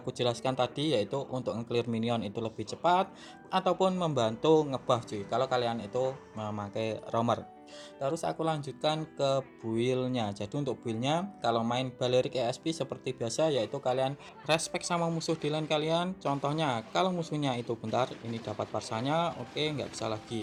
jelaskan tadi, yaitu untuk nge-clear minion itu lebih cepat ataupun membantu ngebuff cuy kalau kalian itu memakai roamer. Terus aku lanjutkan ke build-nya. Jadi untuk build-nya kalau main Balerik ESP seperti biasa, yaitu kalian respect sama musuh di lane kalian. Contohnya kalau musuhnya itu bentar ini dapat Parsanya, oke, nggak bisa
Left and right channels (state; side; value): identical; both; correlation 1.00